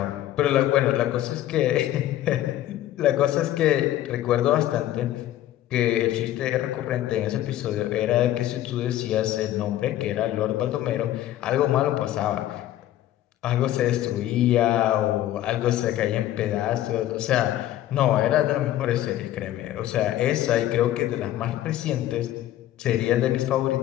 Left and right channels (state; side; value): quieter; right; 13.4 dB